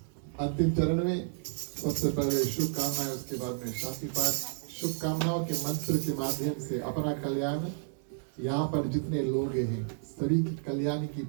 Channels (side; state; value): left; silent; digital silence